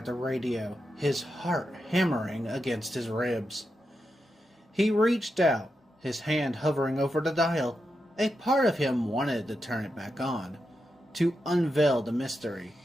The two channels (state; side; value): normal; both; correlation 0.87